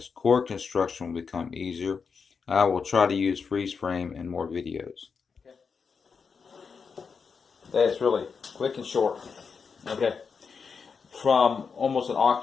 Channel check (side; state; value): right; quieter; 5.6 dB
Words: Chord construction will become easier. I will try to use freeze frame in more videos. That's really quick and short. Okay. From almost an